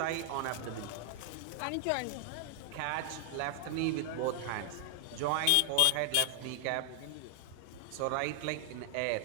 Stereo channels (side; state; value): both; different; correlation 0.00